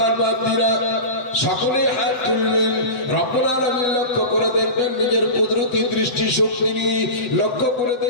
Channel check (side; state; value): right; late; 7.8 ms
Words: বান্দিরা সকলেই হাত তুলবেন, রব্বুল আলামিন লক্ষ্য করে দেখবেন, নিজের কুদরতি দৃষ্টি শক্তি নিয়ে লক্ষ্য করে